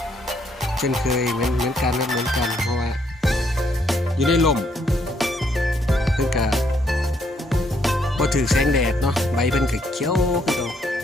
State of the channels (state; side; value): normal; both; correlation 0.71